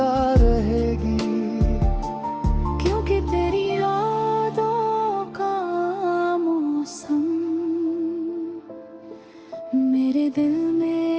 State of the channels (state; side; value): identical; both; correlation 1.00